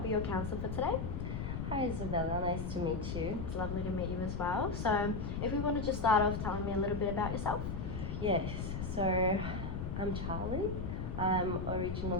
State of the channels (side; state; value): left; noise; rumble, 3 dB below the sound